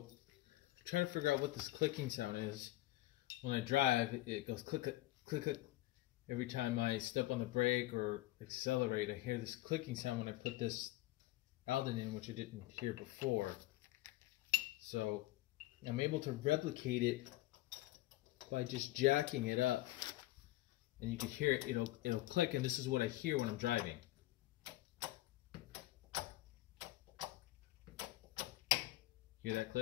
trying to figure out what this clicking sound is. When I drive, it goes click, click, click, click. Every time I step on the brake or accelerate, I hear this clicking sound when I put this Aldan in, which I didn't hear before. So, I'm able to replicate it by just jacking it up. And you can hear it, it'll click, and this is what I hear when I'm driving. Hear that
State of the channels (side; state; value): right; quieter; 17.0 dB